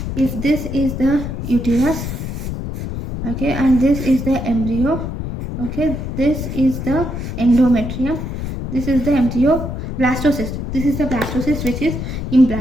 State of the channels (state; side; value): noise; left; rumble, 5 dB below the sound